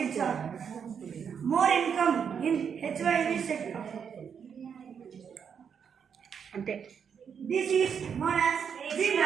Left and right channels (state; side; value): quieter; left; 7.2 dB